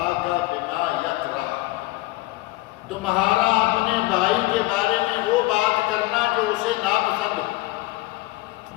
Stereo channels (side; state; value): right; quieter; 19.6 dB